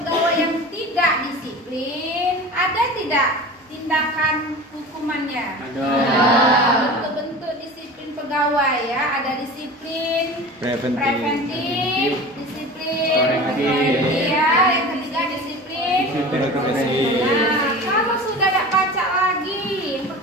yang tidak disiplin, ada tidak tindakan hukumannya? Ada. Bentuk-bentuk disiplin pegawai ya, ada disiplin Preventif. disiplin Korektif. ya, yang ketiga disiplin. Nah, kalau sudah tidak baca lagi, yang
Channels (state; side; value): normal; both; correlation 0.35